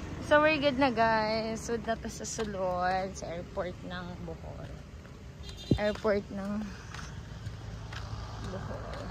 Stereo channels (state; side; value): identical; both; correlation 1.00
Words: So we're good na guys. So na to sa sulod sa airport ng Bohol. Airport ng Bohol.